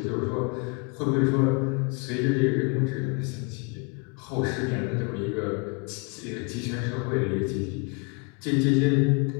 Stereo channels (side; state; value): right; quieter; 32.0 dB